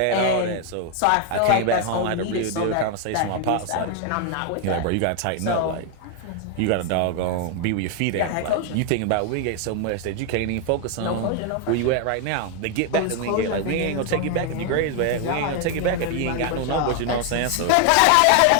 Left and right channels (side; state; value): both; different; correlation 0.00